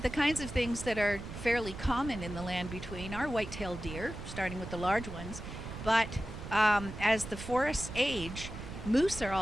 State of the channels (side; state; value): right; noise; rumble, 10 dB below the sound